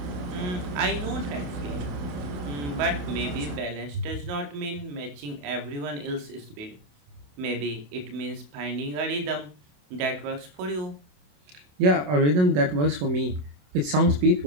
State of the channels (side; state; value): left; late; 27 ms